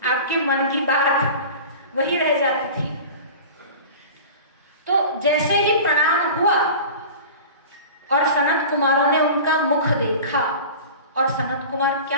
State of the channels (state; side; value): inverted; both; correlation -0.36